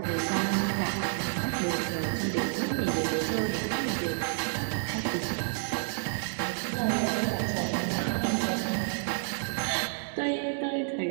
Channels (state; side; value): silent; left; 58 dB below the other